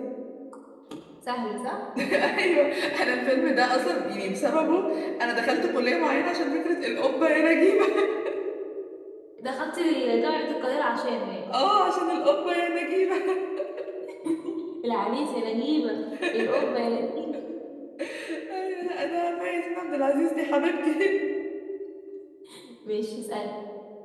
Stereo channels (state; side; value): identical; both; correlation 1.00